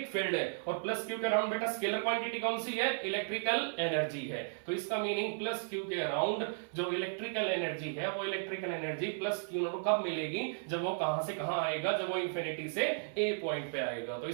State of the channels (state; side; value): silent; left; 55 dB below the other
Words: फील्ड है, और प्लस क्यू के अराउंड बेटा स्केलर क्वांटिटी कौन सी है, इलेक्ट्रिकल एनर्जी है। तो इसका मीनिंग प्लस क्यू के अराउंड जो इलेक्ट्रिकल एनर्जी है, वो electrical energy plus q naught को कब मिलेगी, जब वो कहां से कहां आएगा, जब वो इंफिनिटी से ए पॉइंट पे आएगा। तो